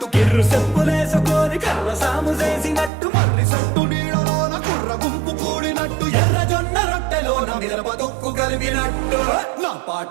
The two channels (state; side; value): drops out; left; at 2.9 s